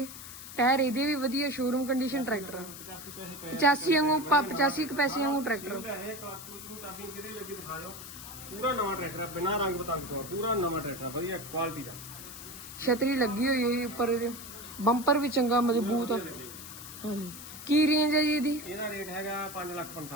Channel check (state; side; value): noise; left; hiss, 13 dB below the sound